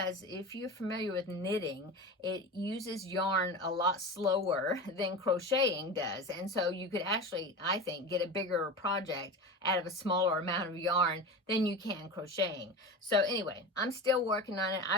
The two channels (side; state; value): both; normal; correlation 0.28